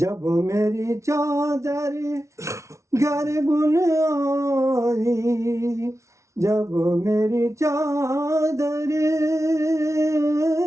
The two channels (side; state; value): left; late; 0.14 ms